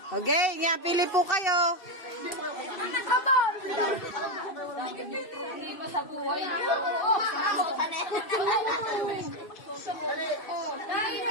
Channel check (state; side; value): late; right; 2.6 ms